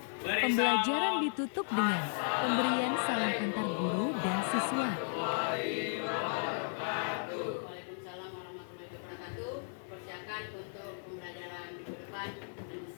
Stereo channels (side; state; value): right; silent; 54 dB below the other